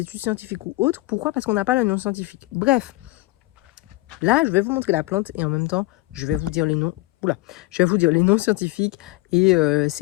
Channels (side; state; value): right; quieter; 20.4 dB